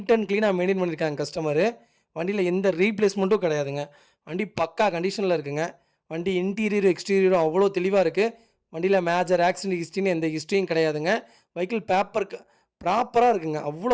அண்ட் க்ளீனாக மெயின்டைன் பண்ணியிருக்காங்க கஸ்டமரு. வண்டியில் எந்த ரீப்ளேஸ்மெண்ட்டும் கிடையாதுங்க. வண்டி பக்கா கண்டிஷனில் இருக்குங்க. வண்டி இன்டீரியரும் எக்ஸ்டீரியரும் அவ்வளோ தெளிவாக இருக்குது. வண்டியில் மேஜர் ஆக்சிடென்ட் ஹிஸ்ட்ரின்னு எந்த ஹிஸ்ட்ரியும் கிடையாதுங்க. வெஹிக்கிள் பேப்பர் ப்ராப்பராக இருக்குங்க. அவ்வளோ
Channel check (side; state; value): both; identical; correlation 1.00